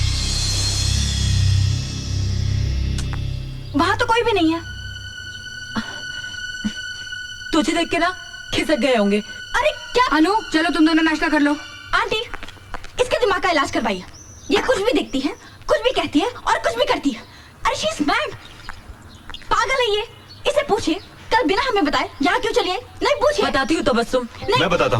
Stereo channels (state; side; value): identical; both; correlation 1.00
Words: वहाँ तो कोई भी नहीं है। तुझे देख के ना खिसक गए होंगे। अरे क्या? अनु, चलो तुम दोनों नाश्ता कर लो। आंटी, इसके दिमाग का इलाज करवाइए। ये कुछ भी दिखती है, कुछ भी कहती है और कुछ भी करती है। अरे शी इज मैड, पागल है ये। इसे पूछिए कल बिना हमें बताए यहाँ क्यों चली आई। नहीं पूछिए। बताती हूँ तबस्सुम। मैं बताता